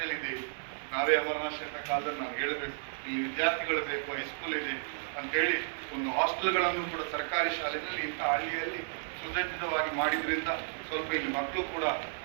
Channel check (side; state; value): left; silent; digital silence